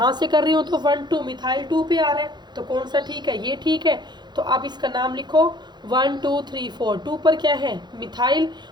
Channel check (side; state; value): left; late; 0.21 ms